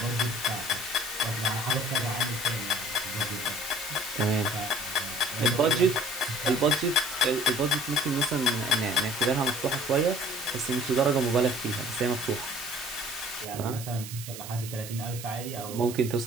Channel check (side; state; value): right; noise; hiss, 11 dB below the sound